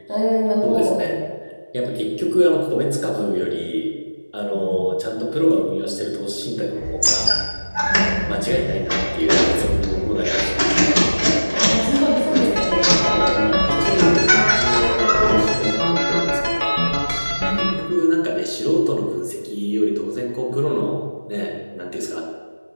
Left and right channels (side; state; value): both; inverted; correlation -1.00